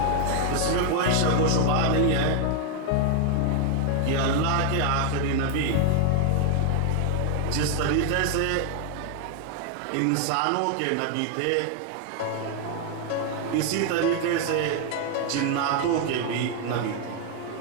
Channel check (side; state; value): both; different; correlation 0.00